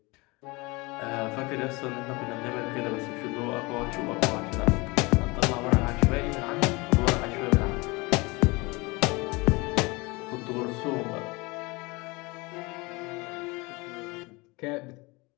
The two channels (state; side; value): quieter; right; 25.1 dB